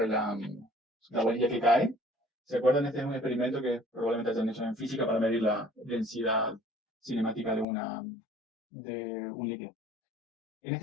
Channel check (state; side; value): drops out; right; at 7.7 s